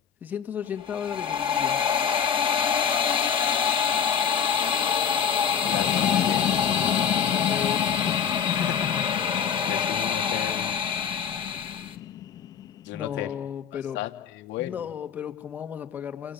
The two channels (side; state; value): right; quieter; 7.6 dB